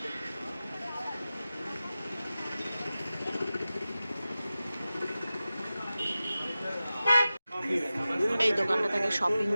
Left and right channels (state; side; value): inverted; both; correlation -0.95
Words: এই দোকানটা থেকে শপিং